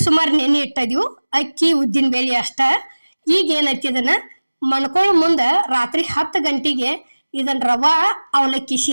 ಸುಮಾರು ನೆನೆ ಇಟ್ಟಿದೀವಿ. ಅಕ್ಕಿ ಉದ್ದಿನ ಬೇಳೆ ಅಷ್ಟ. ಈಗ ಏನೈತಿ, ಇದನ್ನ ಮಣ್ಕೊಳ್ಳೋ ಮುಂದೆ ರಾತ್ರಿ 10 ಗಂಟೆಗೆ ಇದನ್ನ ರವಾ ಅವಲಕ್ಕಿ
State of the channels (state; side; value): inverted; both; correlation -1.00